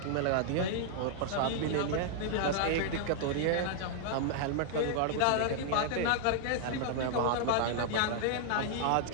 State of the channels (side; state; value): both; different; correlation -0.01